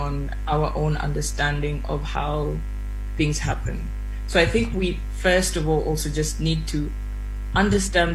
our own understanding of how things happen. So I think we first of all also just need to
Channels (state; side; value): identical; both; correlation 1.00